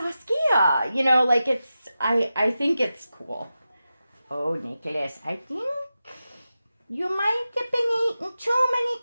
I think it's cool. Oh, Nicholas, I think you might have been eating too many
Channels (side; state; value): both; inverted; correlation -0.92